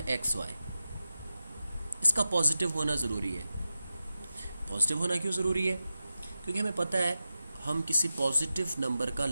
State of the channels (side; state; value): both; inverted; correlation -0.92